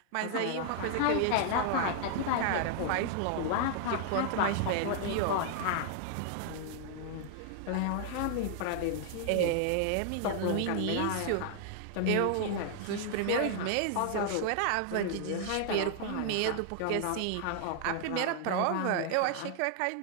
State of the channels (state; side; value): different; both; correlation -0.01